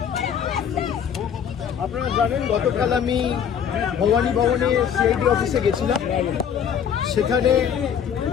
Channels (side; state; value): right; quieter; 8.1 dB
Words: আপনারা জানেন গতকাল আমি ভবানী ভবনে সিআইডি অফিসে গেছিলাম। সেখানে